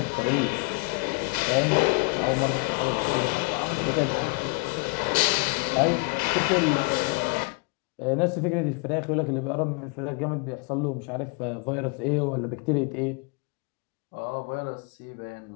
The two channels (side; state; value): right; quieter; 30.0 dB